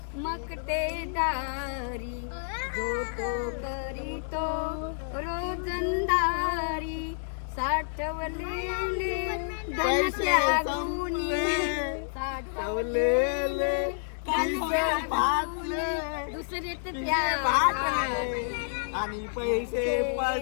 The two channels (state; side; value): silent; right; 59 dB below the other